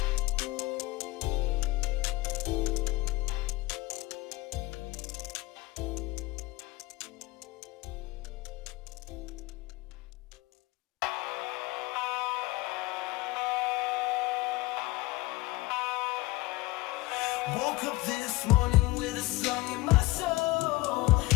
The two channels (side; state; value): right; quieter; 20.3 dB